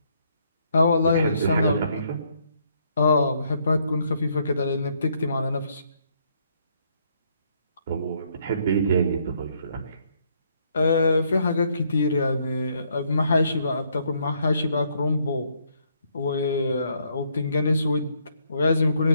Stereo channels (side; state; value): both; inverted; correlation -0.71